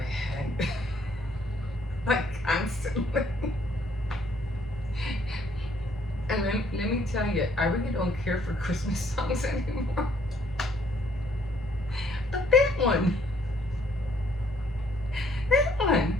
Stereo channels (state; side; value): normal; both; correlation 0.65